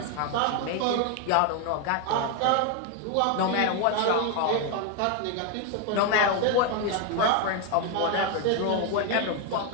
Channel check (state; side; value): different; both; correlation 0.01